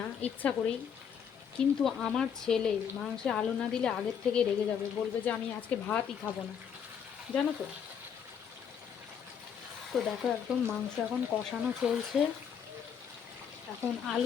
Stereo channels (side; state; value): right; quieter; 7.7 dB